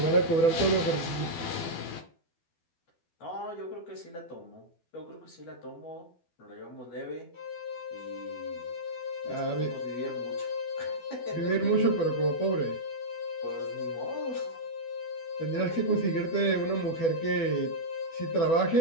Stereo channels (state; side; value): late; right; 12 ms